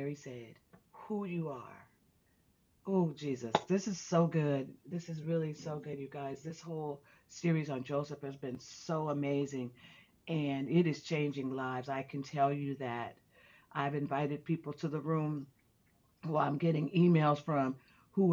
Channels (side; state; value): both; identical; correlation 1.00